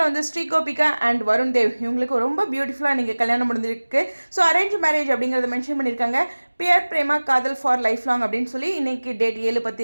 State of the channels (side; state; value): both; inverted; correlation -1.00